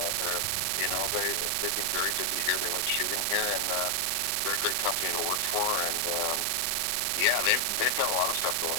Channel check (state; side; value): different; both; correlation 0.00